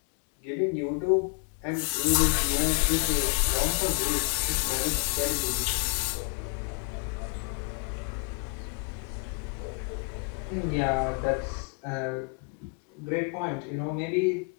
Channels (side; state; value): right; quieter; 37.4 dB